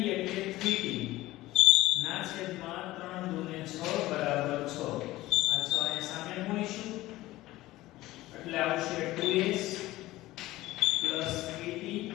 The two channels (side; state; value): right; quieter; 17.3 dB